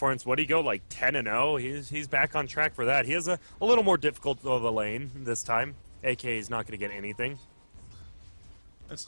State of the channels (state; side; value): inverted; both; correlation -1.00